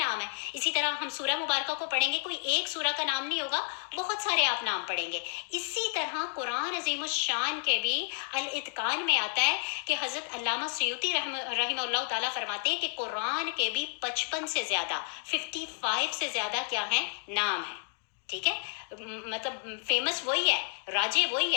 ہیں۔ اسی طرح ہم سورہ مبارکہ کو پڑھیں گے، کوئی ایک سورہ کا نام نہیں ہوگا، بہت سارے آپ نام پڑھیں گے۔ اسی طرح قرآن عظیم الشان کے بھی الاتقان میں آتا ہے کہ حضرت علامہ سیوطی رحمہ اللہ تعالیٰ فرماتے ہیں کہ قرآن کے بھی 55 سے زیادہ 55 سے زیادہ کیا ہیں؟ نام ہیں، ٹھیک ہے؟ مطلب فیمس وہی ہے، راجے وہی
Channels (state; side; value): silent; right; 57 dB below the other